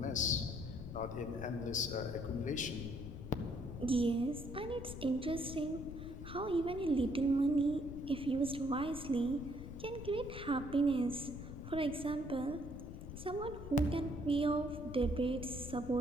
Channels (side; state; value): left; noise; rumble, 10 dB below the sound